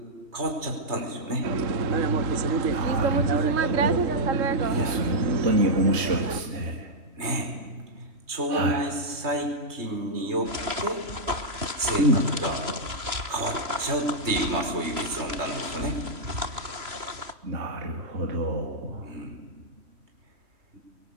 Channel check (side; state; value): left; late; 3.2 ms